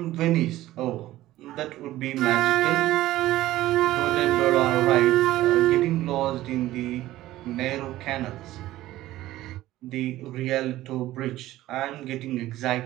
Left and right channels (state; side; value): quieter; left; 15.6 dB